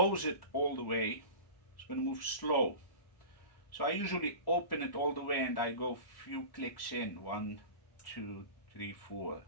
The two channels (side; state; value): right; late; 1.1 ms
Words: it all the way, it's going to move slow. So I usually open it all the way and I go few clicks in, 1, 2, 3, 4,